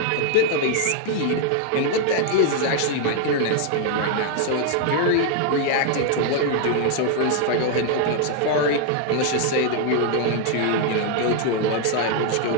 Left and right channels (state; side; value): different; both; correlation 0.00